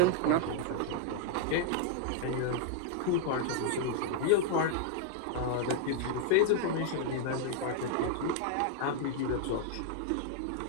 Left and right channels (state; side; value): different; both; correlation -0.01